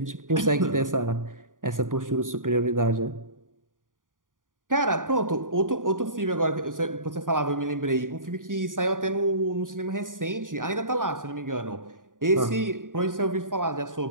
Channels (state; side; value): late; left; 0.89 ms